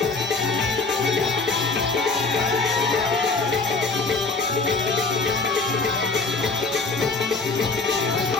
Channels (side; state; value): right; quieter; 4.0 dB